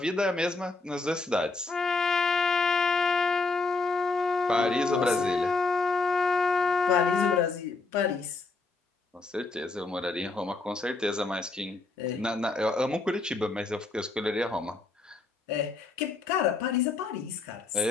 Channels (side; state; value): right; quieter; 3.8 dB